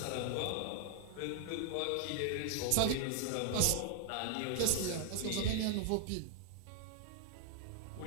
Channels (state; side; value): different; both; correlation 0.00